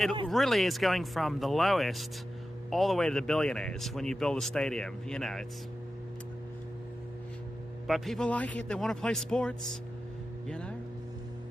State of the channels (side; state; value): both; normal; correlation 0.92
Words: it worse. really is going from the lowest all the way to the billionaires when you build a stadium. You know, it's... But people like it. They want to play sports, you know?